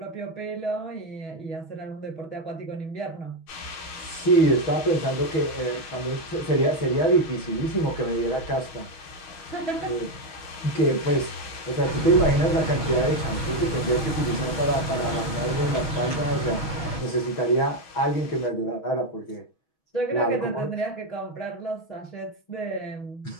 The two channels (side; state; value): right; late; 6.3 ms